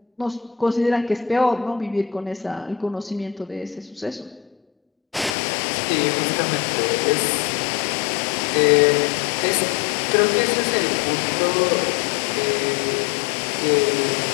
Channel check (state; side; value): drops out; right; at 5.4 s